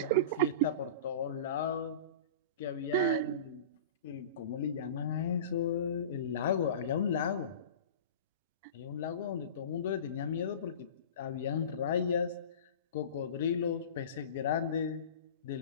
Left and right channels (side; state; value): both; inverted; correlation -0.35